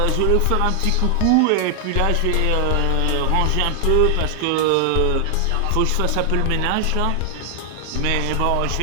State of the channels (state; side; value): different; both; correlation 0.00